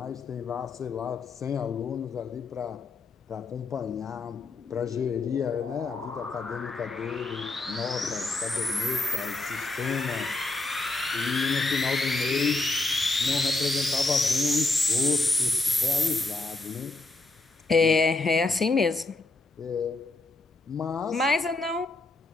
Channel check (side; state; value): right; quieter; 3.2 dB